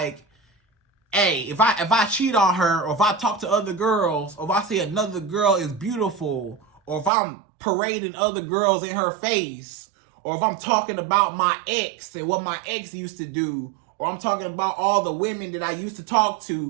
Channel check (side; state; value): left; drops out; at 7.1 s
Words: hey, if I cheat on her, or if I talk to other girls, or if I say another girl is beautiful, or if I'm parading other girls in her face, or if I'm talking about my ex and what my ex used to do, or I'm talking about all the women that I used to talk